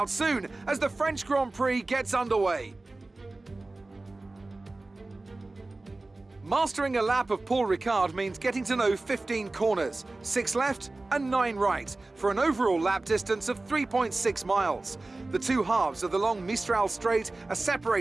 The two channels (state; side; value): quieter; left; 3.1 dB